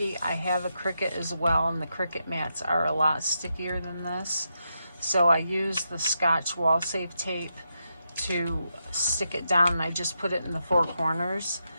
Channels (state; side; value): inverted; both; correlation -0.84